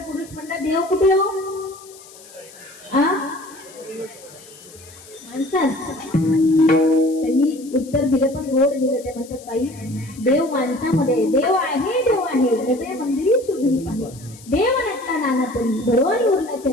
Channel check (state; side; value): noise; left; hiss, 21 dB below the sound